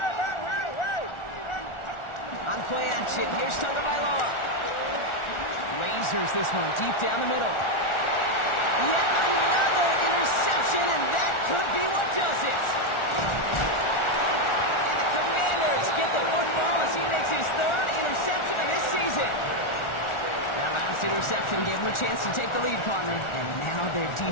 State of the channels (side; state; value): right; late; 1.4 ms